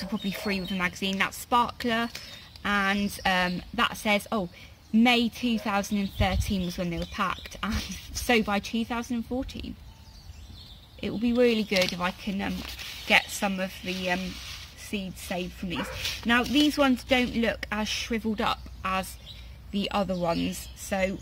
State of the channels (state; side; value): identical; both; correlation 1.00